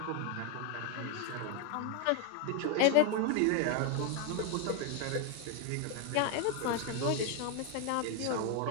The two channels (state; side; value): different; both; correlation 0.01